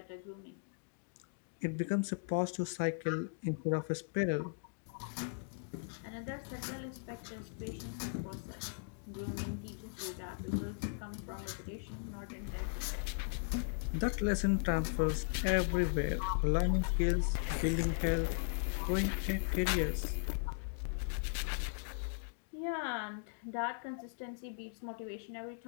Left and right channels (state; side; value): silent; right; digital silence